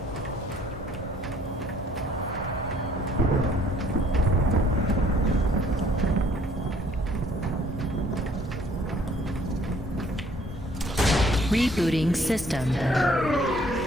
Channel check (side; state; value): both; normal; correlation 0.59